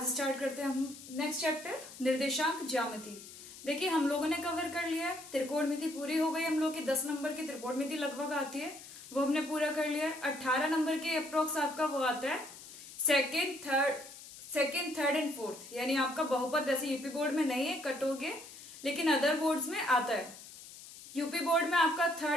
स्टार्ट करते हैं हम नेक्स्ट चैप्टर निर्देशांक ज्यामिति। देखिए, हम लोगों ने कवर कर लिया है, त्रिकोणमिति पूरी हो गई। हम लोग की 10 नंबर की त्रिकोणमिति लगभग आती है, वो हमने पूरा कर लिया है। 18 नंबर के अप्रोक्स आपका वो आता है सेकेंड, थर्ड एंड फोर्थ, यानी आपका बहुपद वैसे यूपी बोर्ड में नहीं है, कट हो गए, लेकिन अदर बोर्ड्स में आता है। यूपी बोर्ड में आपका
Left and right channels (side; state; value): left; noise; hiss, 16 dB below the sound